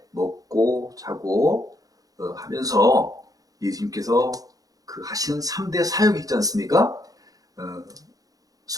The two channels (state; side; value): late; left; 0.17 ms